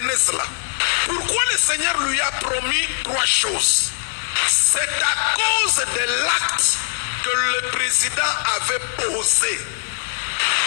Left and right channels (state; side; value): silent; right; 65 dB below the other